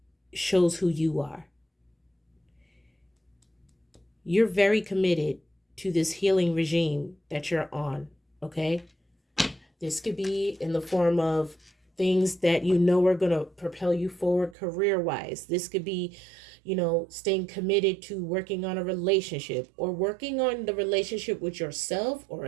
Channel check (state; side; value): drops out; left; at 14.6 s